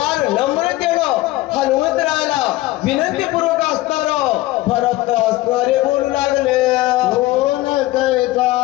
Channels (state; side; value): quieter; right; 17.9 dB